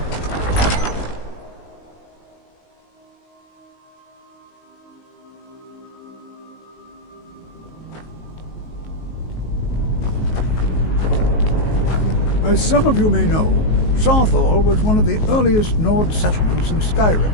As some of you may know, Sarthal was one of the earliest Nord settlements in Skyrim.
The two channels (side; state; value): right; late; 19 ms